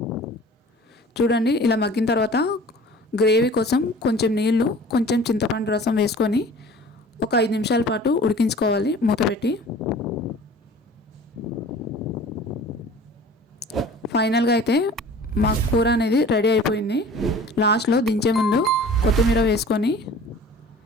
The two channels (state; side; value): normal; both; correlation 0.45